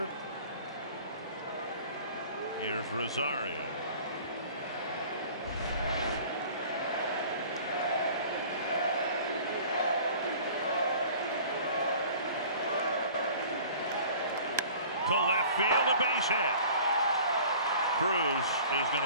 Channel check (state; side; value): inverted; both; correlation -0.46